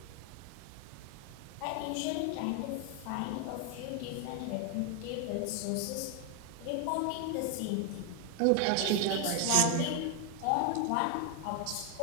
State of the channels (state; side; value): different; both; correlation 0.00